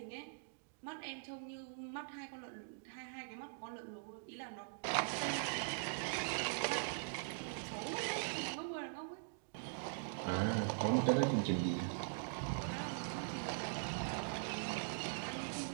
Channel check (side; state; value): left; silent; digital silence